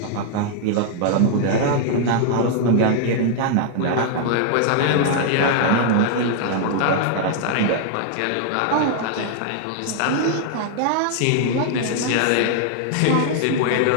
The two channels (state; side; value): different; both; correlation 0.00